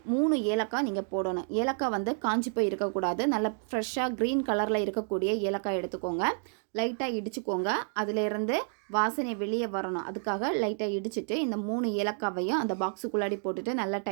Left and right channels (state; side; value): silent; left; 58 dB below the other